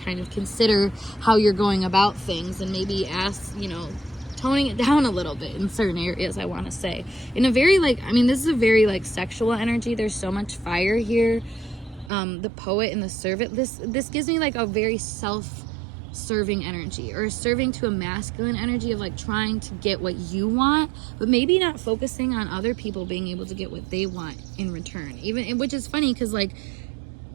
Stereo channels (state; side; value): drops out; left; at 12.1 s